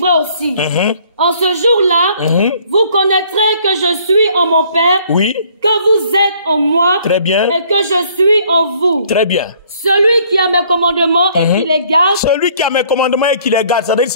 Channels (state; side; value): inverted; both; correlation -0.60